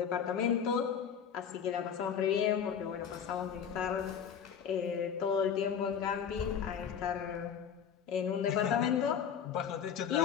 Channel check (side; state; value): right; quieter; 7.7 dB